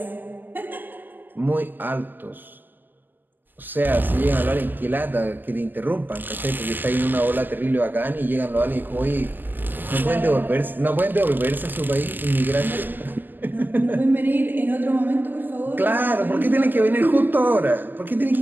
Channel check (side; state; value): left; late; 0.088 ms